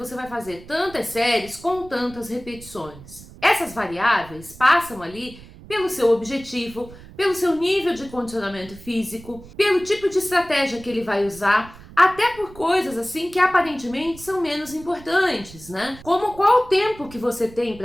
vai fazer tantas séries com tantas repetições. Essas variáveis passam ali pelo seu objetivo, pelo seu nível de condicionamento físico, pelo tipo de estratégia que ele vai usar, até por coisas assim que aparentemente são menos importantes, né? Como qual o tempo que você tem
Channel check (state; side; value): noise; right; rumble, 19 dB below the sound